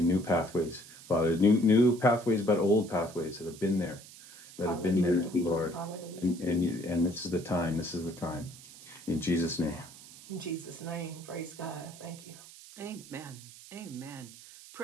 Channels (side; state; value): right; noise; hiss, 18 dB below the sound